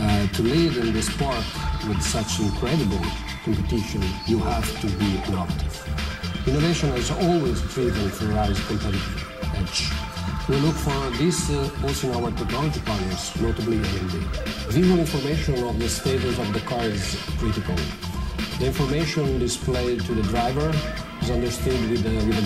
To lead in this sport with such incredible competition, you have to be innovative. Innovation has always driven Ferrari's competitive edge. We look for this also in our technology partners, notably AMD. Visual information of the status of the car is critical. The information displayed to the driver is understood with a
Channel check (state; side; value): identical; both; correlation 1.00